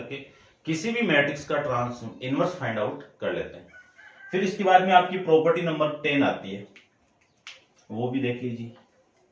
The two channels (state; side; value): identical; both; correlation 1.00